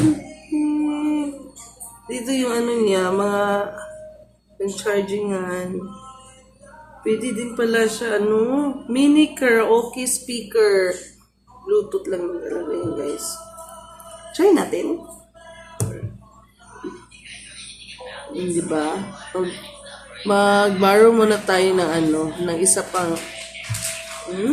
Dito yung niya, mga chargingan. Pwede din pala siya, mini karaoke speaker. Bluetooth lang talaga yun, guys. Try natin. Di ba? Mag-borrow muna tayo ng ng isa pang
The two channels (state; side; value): identical; both; correlation 1.00